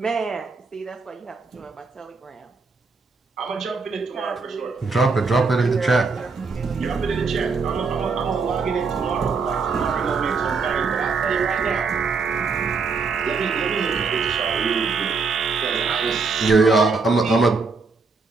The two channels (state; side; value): quieter; left; 4.5 dB